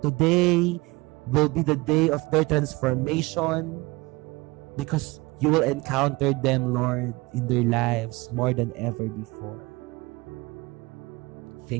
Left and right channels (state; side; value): quieter; left; 23.1 dB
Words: today will be the day of their transformation because you will encounter them, Lord, in their lives more than ever before.